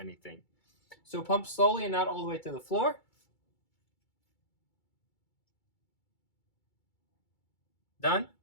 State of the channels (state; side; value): late; right; 2.3 ms